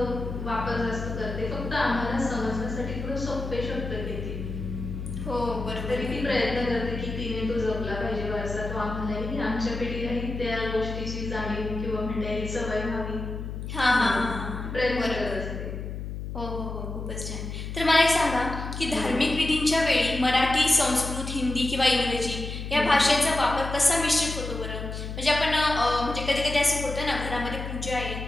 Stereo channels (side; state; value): left; noise; hum, 7 dB below the sound